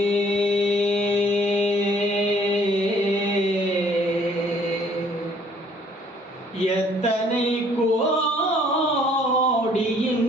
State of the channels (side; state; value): both; normal; correlation 0.60